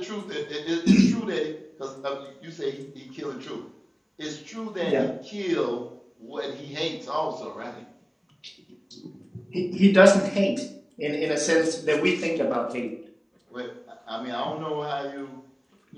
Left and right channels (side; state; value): both; identical; correlation 1.00